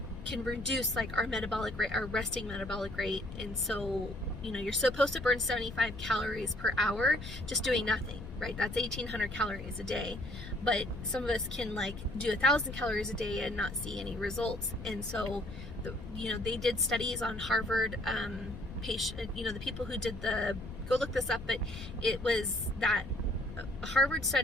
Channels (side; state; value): left; noise; rumble, 11 dB below the sound